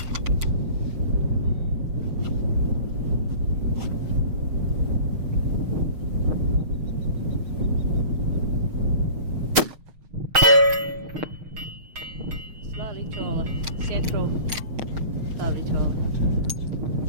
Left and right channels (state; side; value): late; left; 6.5 ms